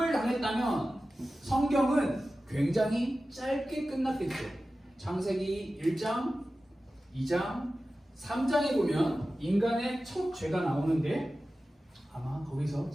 당했다면 성경은 굉장히 짧게 끝났겠죠. 창세기 1장, 2장, 3장에 보면 인간의 첫 죄가 나오는데 아마 거기서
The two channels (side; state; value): both; normal; correlation 0.95